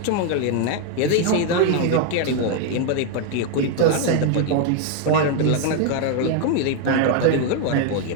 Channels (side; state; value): both; different; correlation 0.01